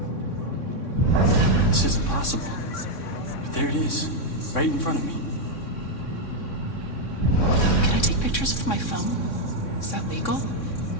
This isn't possible. But there it is, right in front of me. Can I take pictures with my phone? Is that legal?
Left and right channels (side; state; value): right; late; 3.6 ms